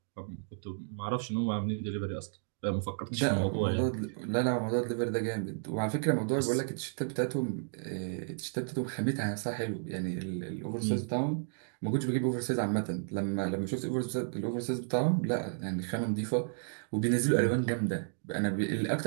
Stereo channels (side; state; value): left; silent; digital silence